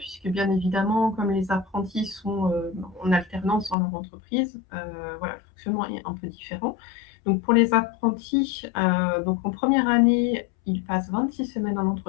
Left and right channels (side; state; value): right; drops out; at 3.8 s